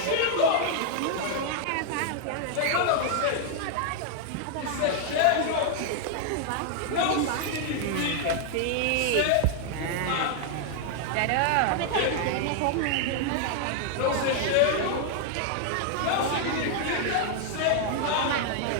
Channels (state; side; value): different; both; correlation 0.00